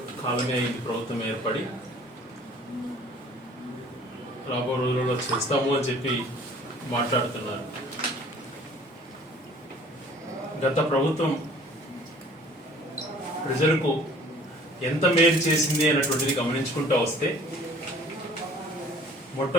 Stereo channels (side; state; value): both; normal; correlation 0.51